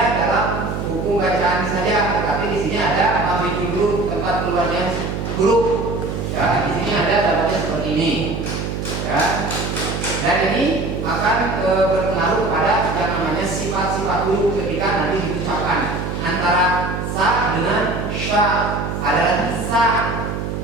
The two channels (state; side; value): noise; right; hum, 4 dB below the sound